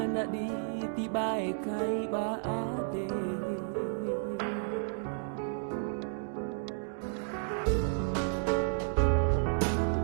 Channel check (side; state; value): left; silent; digital silence